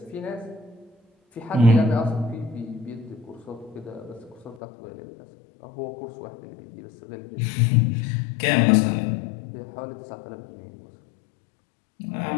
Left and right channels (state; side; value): drops out; right; at 4.6 s